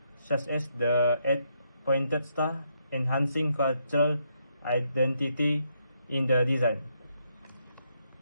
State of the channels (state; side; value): inverted; both; correlation -0.77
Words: such as the eight-pointed star, enhancing cultural identity in the design.